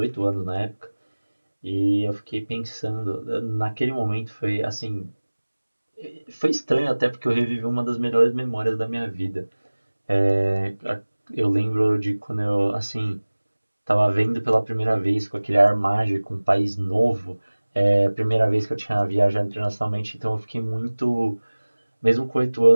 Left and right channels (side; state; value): both; inverted; correlation -1.00